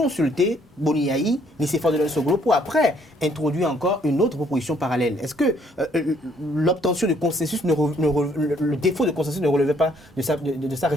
Boniaï, Nicéphore Delors Soglo pour après introduire encore une autre proposition parallèle. Est-ce que l'obtention de consensus, le défaut de consensus ne relevait pas de sa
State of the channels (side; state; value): both; normal; correlation 0.66